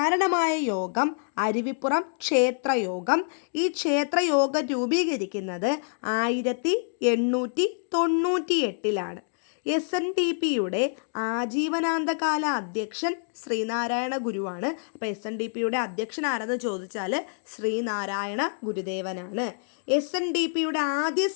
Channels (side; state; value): right; silent; digital silence